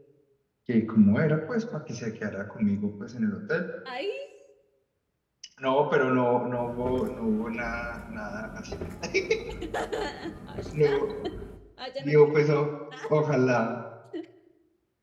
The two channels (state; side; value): identical; both; correlation 1.00